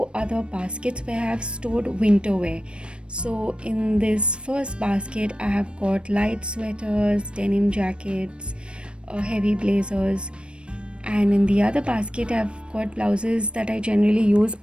other baskets where I have stored winter wear. So in this first basket, I have got light sweaters, denim jackets, heavy blazers, and in the other basket I've got blouses that I generally use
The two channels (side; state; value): left; late; 0.057 ms